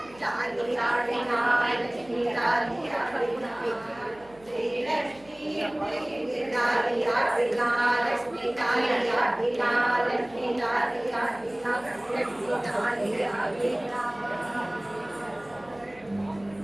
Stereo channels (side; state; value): right; noise; hum, 26 dB below the sound